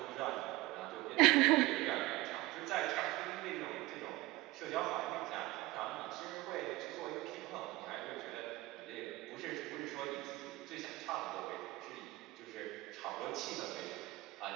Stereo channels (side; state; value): left; quieter; 19.7 dB